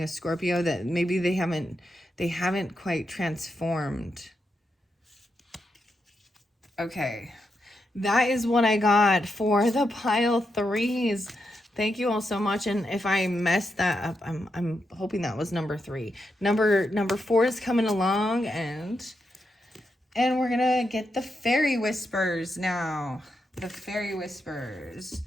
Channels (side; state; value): both; normal; correlation 0.84